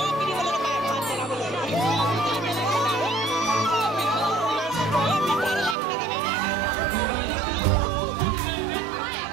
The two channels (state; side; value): drops out; left; at 5.8 s